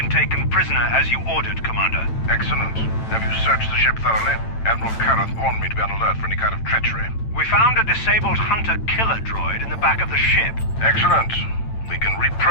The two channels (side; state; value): right; late; 8.9 ms